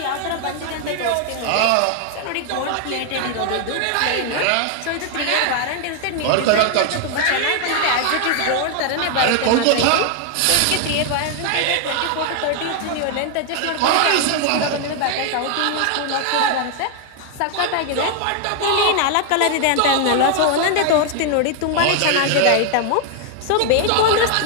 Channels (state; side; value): different; both; correlation 0.00